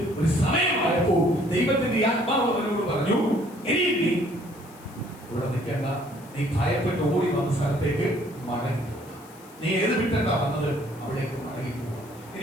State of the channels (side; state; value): left; noise; hiss, 24 dB below the sound